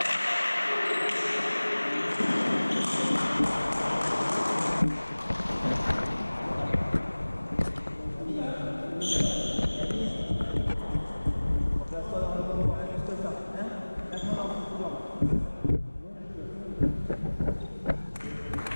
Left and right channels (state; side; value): inverted; both; correlation -1.00